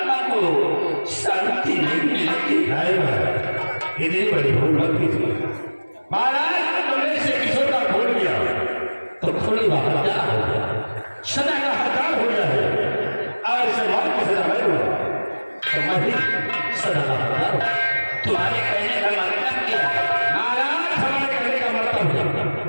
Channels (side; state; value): both; inverted; correlation -1.00